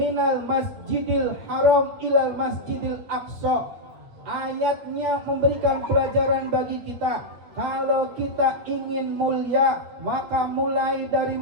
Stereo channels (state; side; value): late; left; 8.3 ms